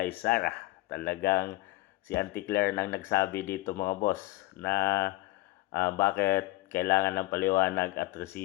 Sara? Talagang si Auntie Claire nang nagsabi dito, mga boss, na bakit kailangan ng paliwanag at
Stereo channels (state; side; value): quieter; right; 19.5 dB